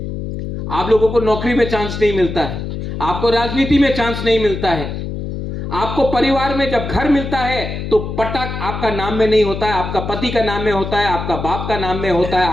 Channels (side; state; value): left; noise; hum, 6 dB below the sound